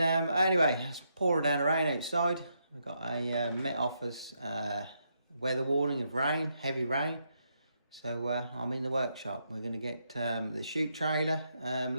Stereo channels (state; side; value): inverted; both; correlation -0.79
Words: anyway, it's pouring down the rain outside. We've got a Met Office weather warning of rain, heavy rain. So I'm in the workshop. We're going to get the chute trailer